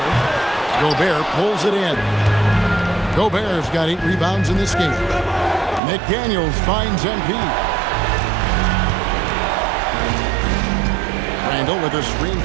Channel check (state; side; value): drops out; left; at 5.8 s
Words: Gobert pulls it in. Gobert's got 8 rebounds in this game. McDaniels finds MP. Randall with a screen